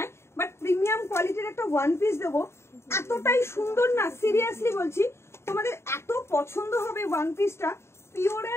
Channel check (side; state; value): right; late; 0.13 ms